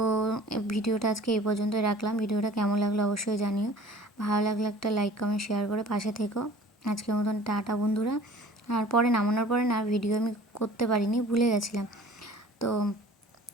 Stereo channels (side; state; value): both; normal; correlation 0.47